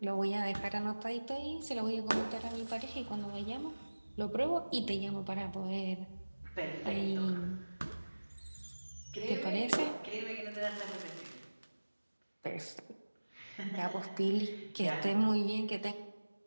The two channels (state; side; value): inverted; both; correlation -1.00